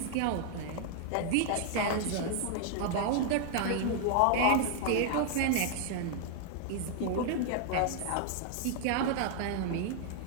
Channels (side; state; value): both; different; correlation 0.00